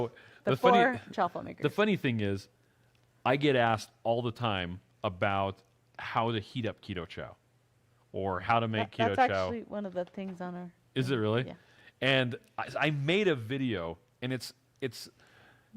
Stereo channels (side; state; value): both; identical; correlation 1.00